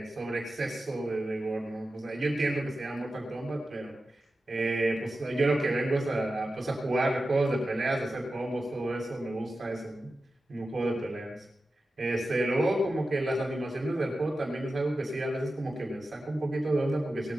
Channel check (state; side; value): normal; both; correlation 0.93